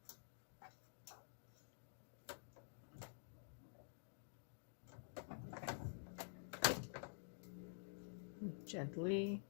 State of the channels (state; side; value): silent; right; digital silence